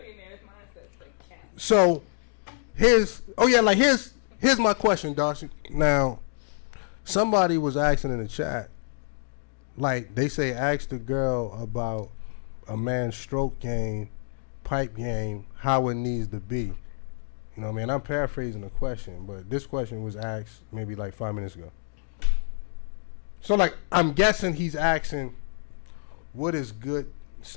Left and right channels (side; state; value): right; silent; digital silence